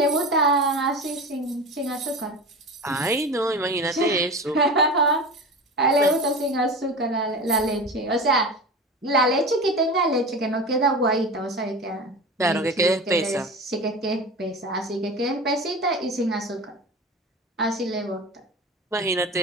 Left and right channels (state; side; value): normal; both; correlation 0.30